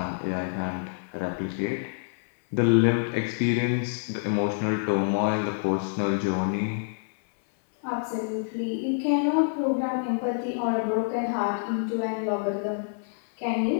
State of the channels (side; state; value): right; silent; 60 dB below the other